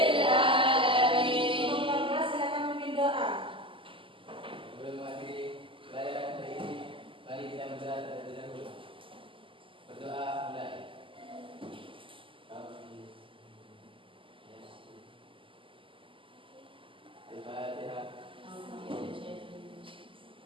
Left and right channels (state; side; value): late; left; 0.25 ms